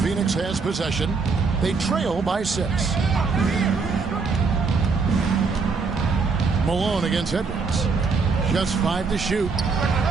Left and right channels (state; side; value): quieter; left; 4.7 dB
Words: Phoenix has possession. They trail by 6. Malone against Edwards. Just 5 to shoot.